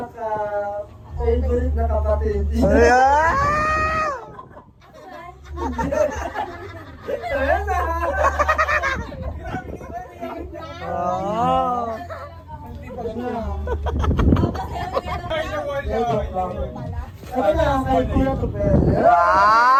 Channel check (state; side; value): identical; both; correlation 1.00